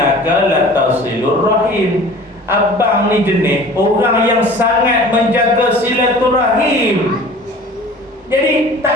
latasilur rahim. Abang ni jenis orang yang sangat menjaga silaturahim. Jadi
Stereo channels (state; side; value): normal; both; correlation 0.44